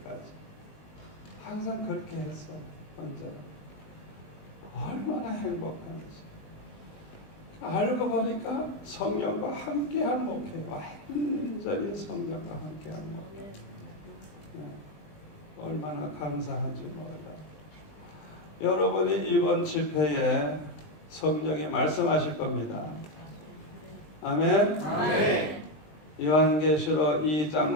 항상 그렇게 했어요. 언제나 얼마나 행복한지. 알고 보니까 성령과 함께한 목회, 완전히 성령과 함께한 목회. 얼마나 감사한지 몰라요. 여러분이 이번 집회에 성령이 말씀하실 겁니다. 아멘. 아멘. 요한계시록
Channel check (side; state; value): right; late; 20 ms